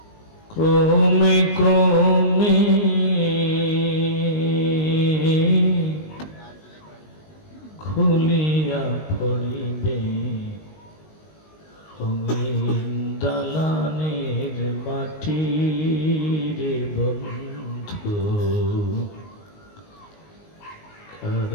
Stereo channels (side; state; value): right; late; 19 ms